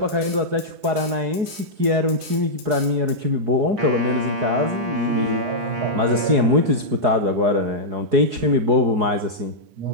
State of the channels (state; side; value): late; left; 4.7 ms